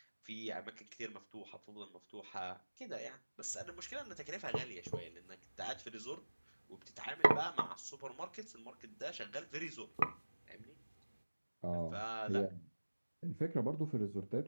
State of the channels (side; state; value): both; inverted; correlation -1.00